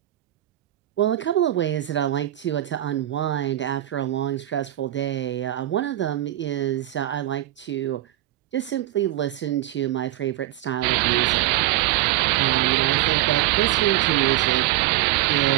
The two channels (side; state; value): left; quieter; 14.8 dB